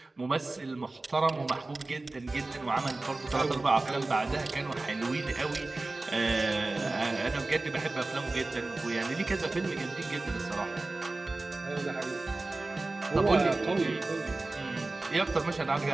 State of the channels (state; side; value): quieter; left; 3.1 dB